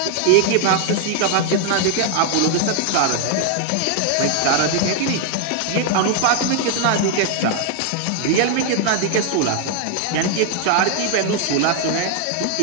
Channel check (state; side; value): different; both; correlation 0.00